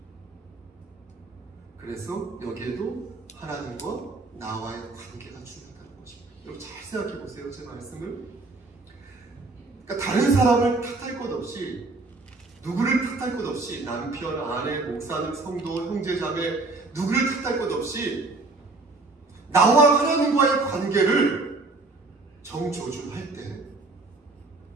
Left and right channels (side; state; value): left; quieter; 3.4 dB